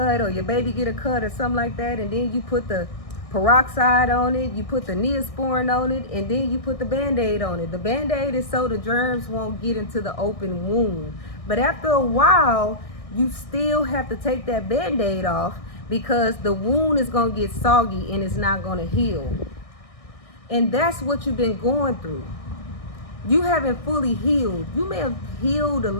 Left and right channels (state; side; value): late; right; 1.6 ms